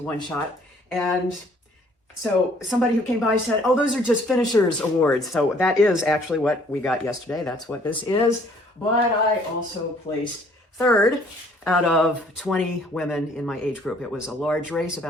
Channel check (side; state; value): both; normal; correlation 0.59